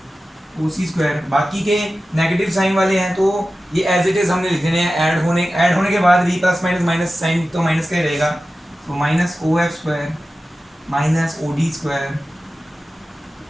O C square, बाकी के नेगेटिव साइन वाले हैं तो ये एज इट इज हमने लिख देने हैं। ऐड होने के बाद भी प्लस माइनस माइनस साइन तो माइनस का ही रहेगा, तो minus O F square minus O D square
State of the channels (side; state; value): both; normal; correlation 0.94